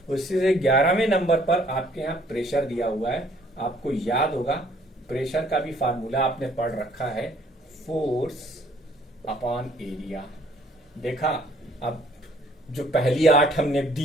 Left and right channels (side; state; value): both; normal; correlation 0.61